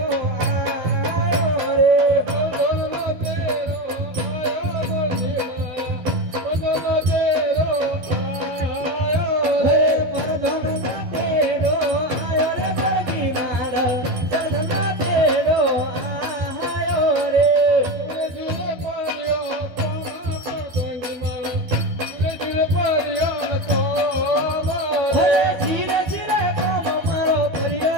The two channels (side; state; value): left; late; 12 ms